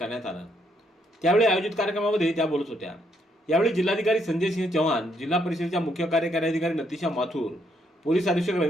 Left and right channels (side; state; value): both; normal; correlation 0.74